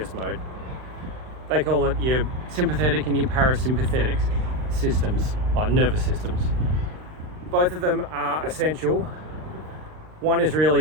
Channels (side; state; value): left; late; 39 ms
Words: mode. They call it your sympathetic and your parasympathetic systems, like nervous systems. Both of them are essential. One is really